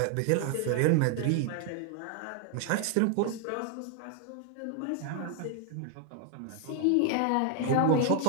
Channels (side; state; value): both; different; correlation 0.01